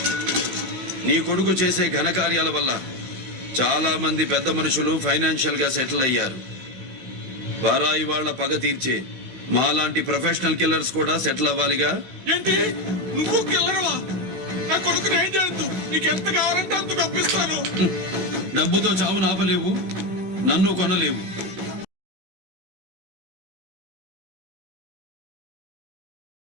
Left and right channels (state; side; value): late; left; 16 ms